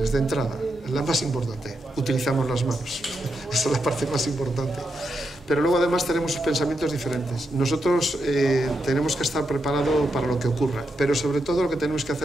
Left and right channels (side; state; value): both; normal; correlation 0.84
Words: De entrada, la más importante, utilizamos las manos. Esa es la parte más importante. Pero luego además tenemos pensamientos diferentes. Nosotros tenemos que estar preparados para lo que ocurra, pero sobre todo lo que tenemos que